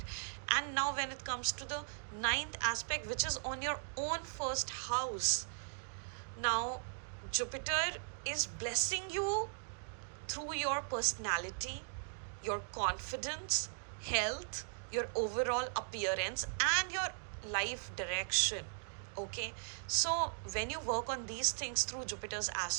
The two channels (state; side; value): silent; left; digital silence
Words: And now when it comes to the 9th aspect, which is on your own 1st house, now Jupiter is blessing you through your personality, your confidence, health, your overall appearance, and your life direction. Okay, so when you work on these things through Jupiter's